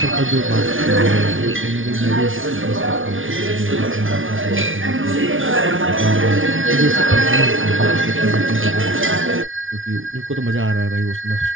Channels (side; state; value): left; late; 0.57 ms